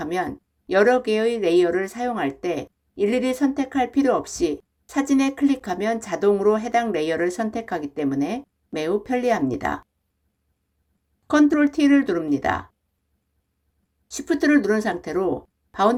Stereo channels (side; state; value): both; identical; correlation 1.00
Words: 여러 개의 레이어를 사용할 때 일일이 선택할 필요 없이 사진에 클릭하면 자동으로 해당 레이어를 선택하기 때문에 매우 편리합니다. Ctrl T를 누릅니다. Shift를 누른 상태로